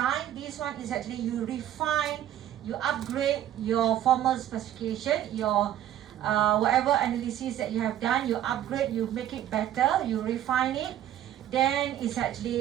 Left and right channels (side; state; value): left; quieter; 11.7 dB